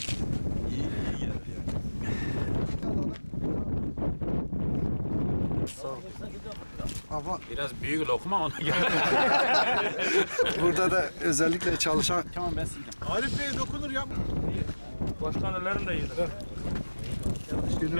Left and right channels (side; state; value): both; inverted; correlation -1.00